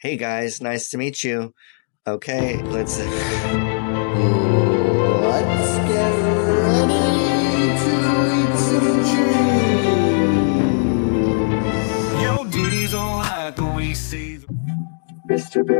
Hey guys, nice to meet you. Okay, let's Let's get ready to eat some cheese. Yo, Diddy's all like the way say Mr.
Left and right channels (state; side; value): silent; right; digital silence